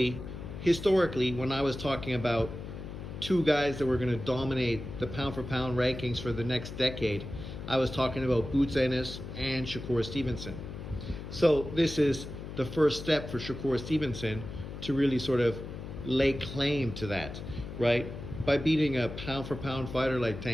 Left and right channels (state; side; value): noise; left; hum, 9 dB below the sound